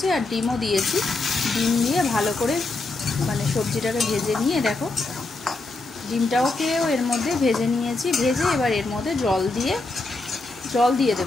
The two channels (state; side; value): quieter; right; 3.2 dB